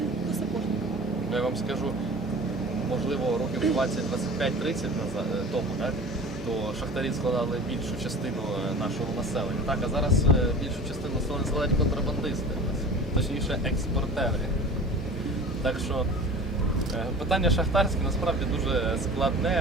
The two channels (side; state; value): both; normal; correlation 0.39